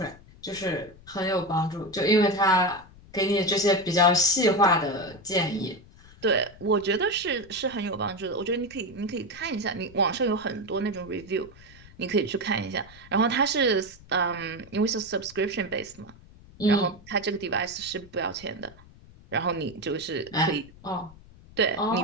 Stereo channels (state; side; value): noise; left; rumble, 22 dB below the sound